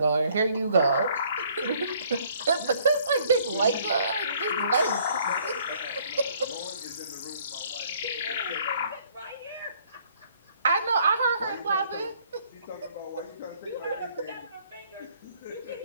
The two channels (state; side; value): inverted; both; correlation -0.61